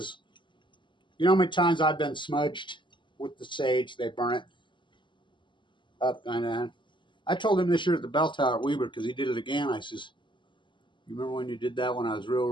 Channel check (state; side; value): late; right; 0.23 ms